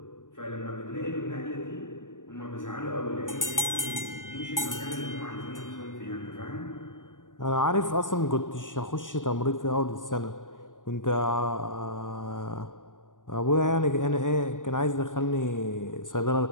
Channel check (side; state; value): right; late; 0.88 ms